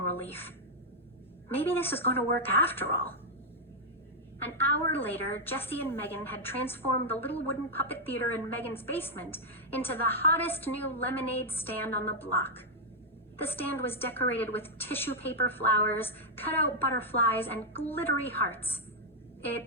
relief. Maybe this is going to work after all. An hour later, Jessie and Megan had transformed the little wooden puppet theater in Megan's basement into the hottest new lemonade stand on the block. The stand was decorated with tissue paper flowers, cut-out butterflies, and glittery hearts.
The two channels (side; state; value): both; normal; correlation -0.03